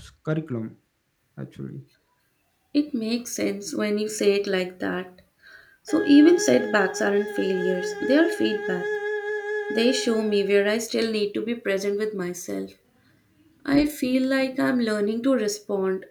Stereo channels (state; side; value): identical; both; correlation 1.00